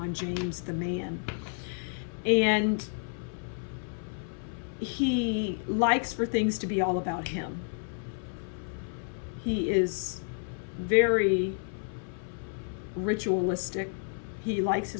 James, the man. And he likes for things to be all about him. He is very ritualistic. He likes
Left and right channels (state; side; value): silent; right; 57 dB below the other